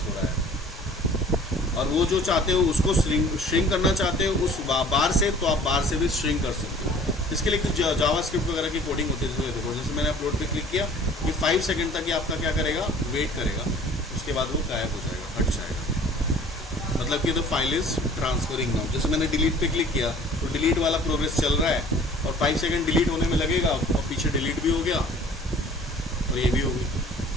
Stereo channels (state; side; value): normal; both; correlation 0.50